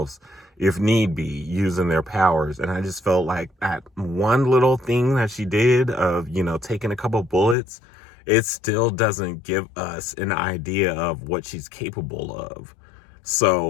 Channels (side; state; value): right; drops out; at 7.6 s